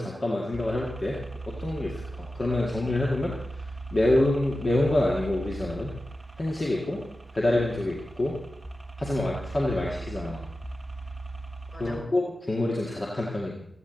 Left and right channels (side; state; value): both; normal; correlation 0.93